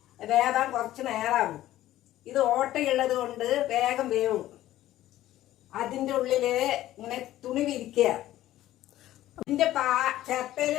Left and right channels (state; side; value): quieter; right; 14.3 dB